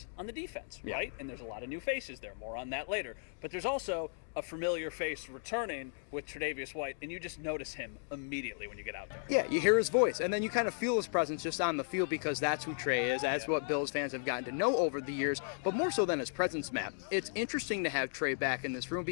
on the defense, Yeah. right? And there's a lot of new faces there. More on that later. But there's also a familiar face returning with Tre'Davious White, and you just notice him immediately when you get out there. Yeah, you hear his voice, and then you kind of feel his presence just on the field because that's who Trey is. That's what Bills fans have gotten to know over the years, but more so than his presence, Matt. It's interesting to have Trey back in this room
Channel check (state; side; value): silent; right; digital silence